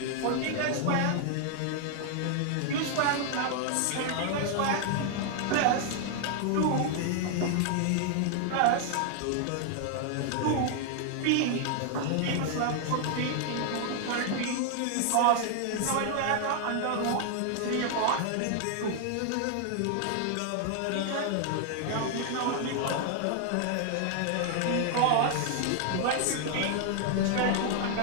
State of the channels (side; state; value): both; different; correlation 0.00